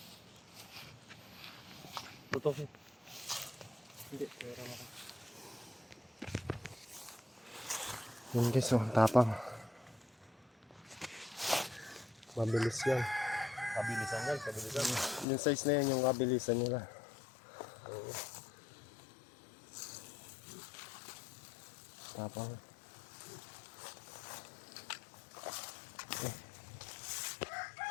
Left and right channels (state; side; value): drops out; right; at 15.2 s